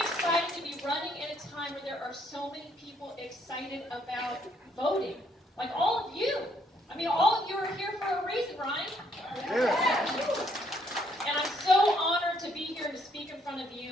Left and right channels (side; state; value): both; normal; correlation 0.69